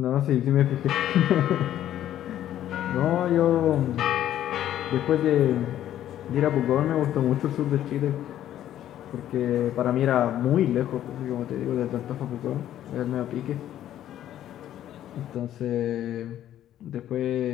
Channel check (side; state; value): right; quieter; 11.8 dB